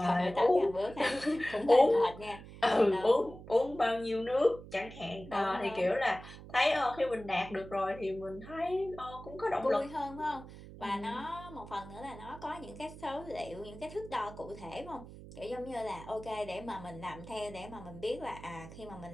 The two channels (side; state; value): right; noise; hum, 15 dB below the sound